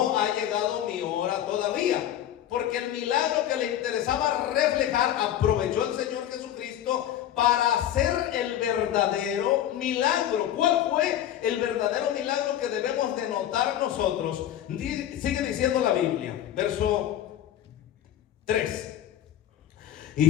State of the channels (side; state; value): right; quieter; 11.5 dB